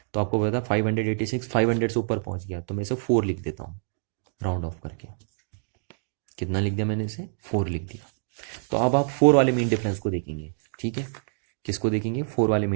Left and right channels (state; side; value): silent; left; digital silence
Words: तो आपको पता है 586 500 से ऊपर पहुंच गया, तो मैं इसे 4 लिख देता हूँ राउंड ऑफ करके। कितना लिख दिया मैंने इसे, 4 लिख दिया। तो अब आप 4 वाले मीन डिफरेंस को देखेंगे। ठीक है, किसको देखेंगे, 4 वाले